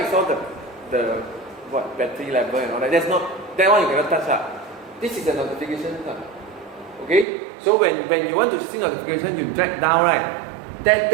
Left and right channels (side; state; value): left; drops out; at 7.2 s